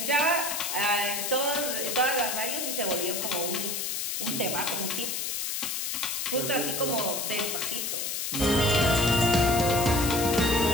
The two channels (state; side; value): noise; left; hiss, 2 dB below the sound